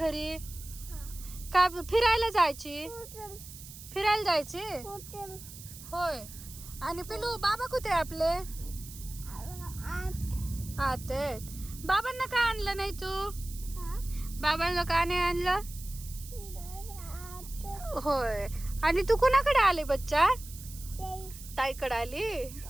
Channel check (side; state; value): right; noise; hiss, 15 dB below the sound